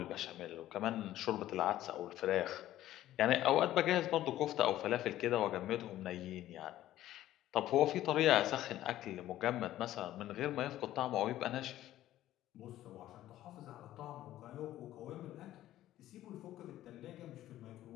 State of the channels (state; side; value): quieter; right; 13.7 dB